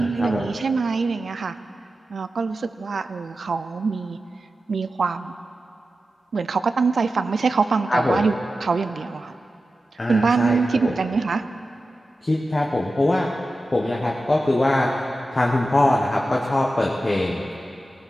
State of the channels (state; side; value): normal; both; correlation 0.93